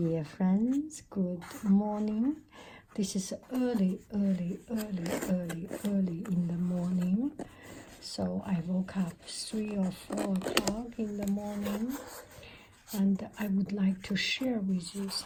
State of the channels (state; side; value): identical; both; correlation 1.00